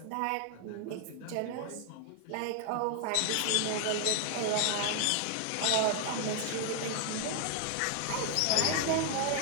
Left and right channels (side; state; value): both; different; correlation 0.00